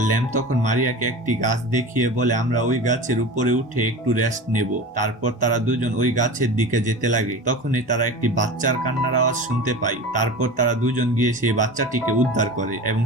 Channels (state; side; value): normal; both; correlation 0.32